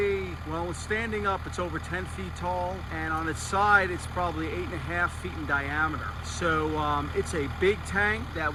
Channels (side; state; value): both; identical; correlation 1.00